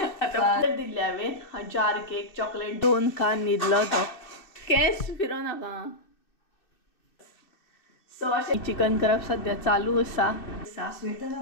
आता दिले हांवें जार केक चॉकलेट 2 खान न्हिदलो तो केस फिरो नाका सो अशें चिकन करप सद्या चालू आसा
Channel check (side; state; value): right; late; 2.6 ms